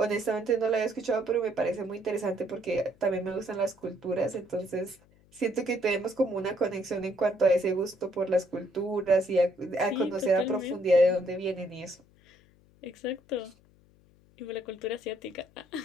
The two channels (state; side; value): noise; left; hum, 30 dB below the sound